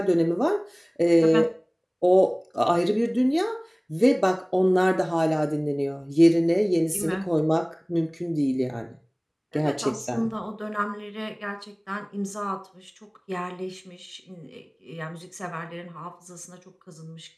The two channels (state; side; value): identical; both; correlation 1.00